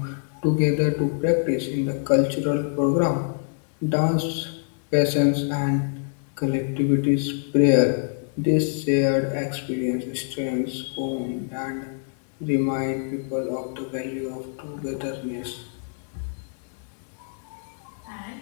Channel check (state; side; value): silent; right; digital silence